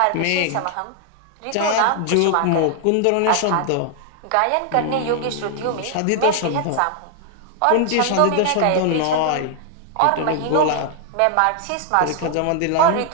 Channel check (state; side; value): different; both; correlation 0.00